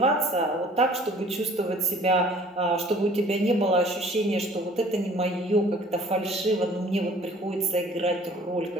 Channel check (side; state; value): both; normal; correlation 0.52